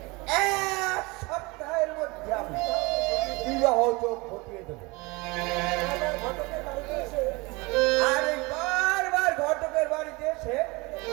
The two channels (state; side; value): quieter; left; 25.2 dB